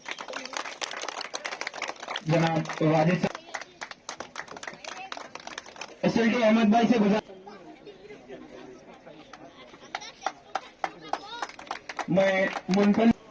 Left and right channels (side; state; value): both; identical; correlation 1.00